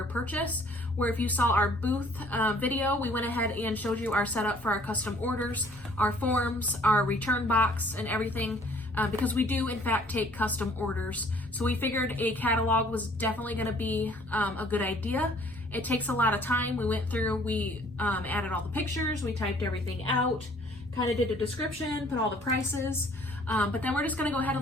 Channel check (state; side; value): normal; both; correlation 0.57